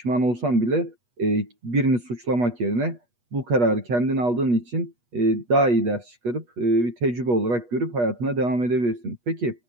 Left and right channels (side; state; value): left; late; 8.3 ms